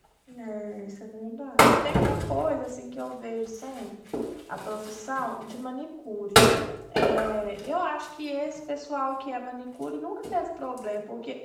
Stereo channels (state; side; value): identical; both; correlation 1.00